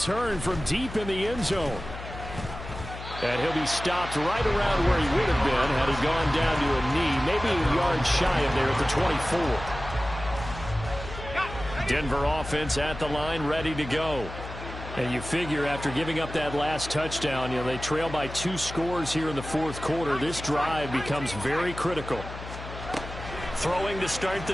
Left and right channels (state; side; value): noise; left; hum, 11 dB below the sound